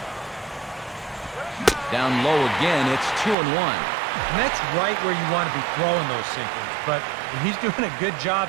Down low again, it's 2-1. And that's right where you want to be throwing those sinkers, but he's doing a good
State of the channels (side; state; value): left; drops out; at 3.4 s